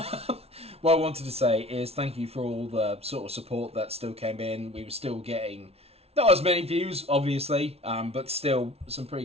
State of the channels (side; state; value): left; late; 0.30 ms